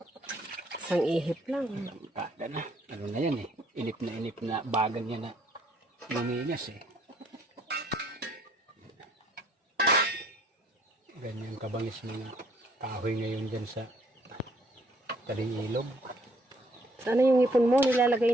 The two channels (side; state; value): both; normal; correlation 0.64